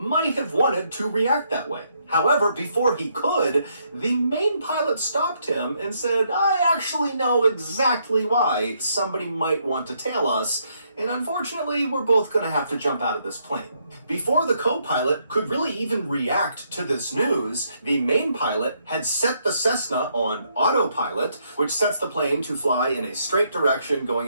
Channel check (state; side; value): inverted; both; correlation -0.74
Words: have wanted to react that way. However, before he could, the main pilot stopped him and said, I actually know exactly why somebody might want to tail us, and unfortunately, we're both going to have to jump out of this plane. Before the co-pilot could really even react to this news, the main pilot had set the Cessna on autopilot, which sets the plane to fly in a straight direction, going